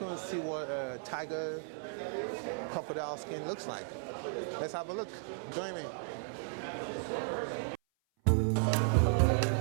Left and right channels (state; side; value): silent; left; 54 dB below the other